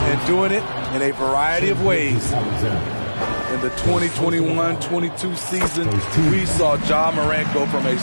doing it in a variety of ways. In the 2021-22 season, we saw Ja Morant go from a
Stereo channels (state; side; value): inverted; both; correlation -1.00